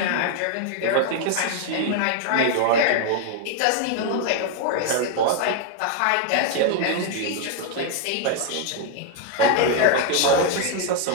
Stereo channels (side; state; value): both; different; correlation 0.00